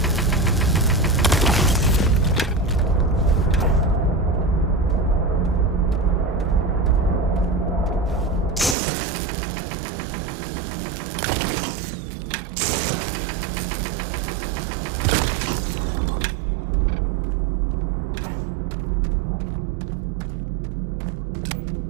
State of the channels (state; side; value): drops out; left; at 8.8 s